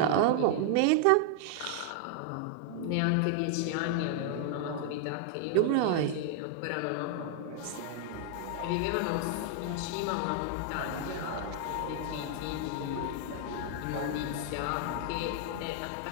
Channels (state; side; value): different; both; correlation 0.00